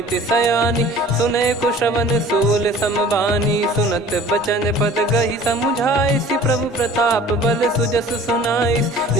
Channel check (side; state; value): both; normal; correlation 0.47